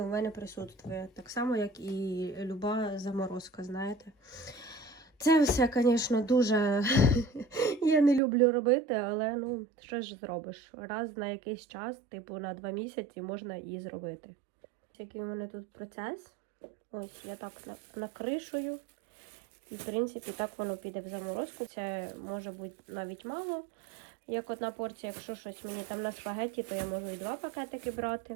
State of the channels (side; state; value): left; drops out; at 8.2 s